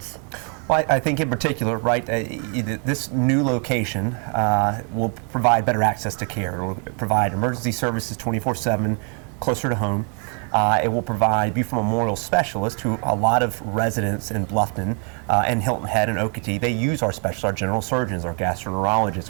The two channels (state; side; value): quieter; left; 39.4 dB